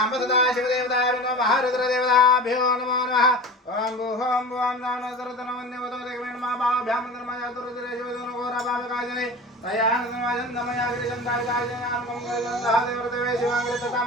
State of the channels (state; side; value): normal; both; correlation 0.34